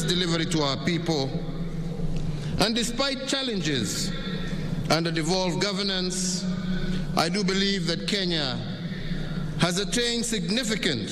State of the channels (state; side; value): identical; both; correlation 1.00